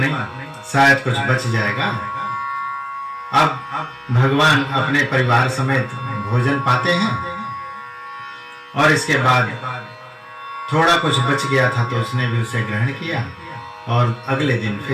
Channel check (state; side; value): identical; both; correlation 1.00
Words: शायद कुछ बच जाएगा। अब भगवान अपने परिवार समेत भोजन पाते हैं। और इसके बाद थोड़ा कुछ बच गया था तो उसने भी उसे ग्रहण किया और अगले दिन